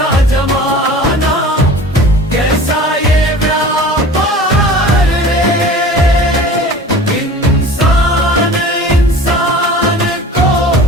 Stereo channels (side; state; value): both; normal; correlation 0.41